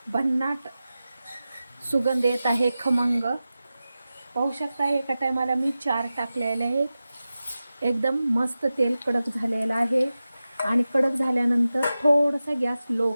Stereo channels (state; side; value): inverted; both; correlation -0.94